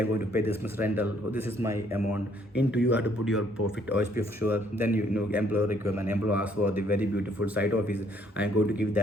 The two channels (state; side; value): normal; both; correlation 0.66